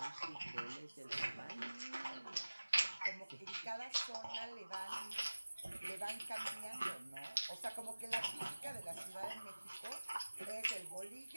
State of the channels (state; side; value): inverted; both; correlation -1.00